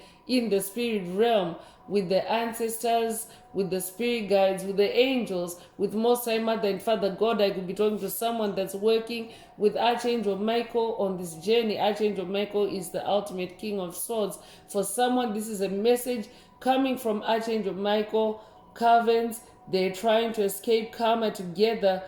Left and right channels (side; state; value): both; identical; correlation 1.00